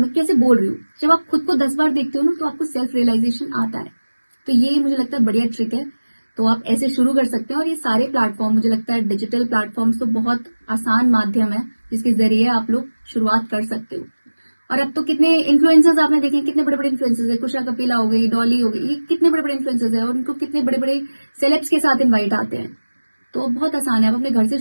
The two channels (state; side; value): inverted; both; correlation -1.00